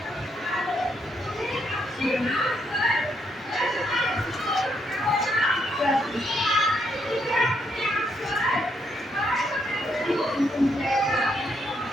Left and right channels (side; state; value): both; normal; correlation 0.76